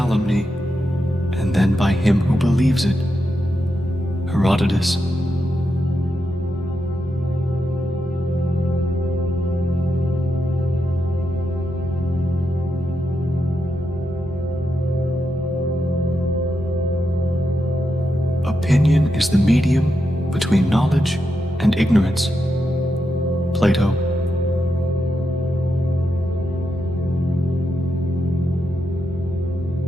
and then by him who believes it. Herodotus. Opinion is the medium between knowledge and ignorance. Plato.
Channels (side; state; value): both; normal; correlation 0.85